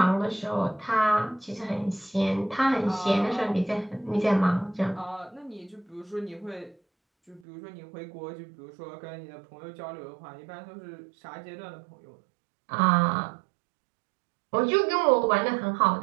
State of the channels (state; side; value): drops out; left; at 7.4 s